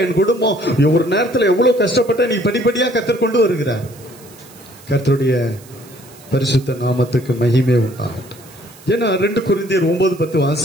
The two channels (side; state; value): right; noise; hiss, 23 dB below the sound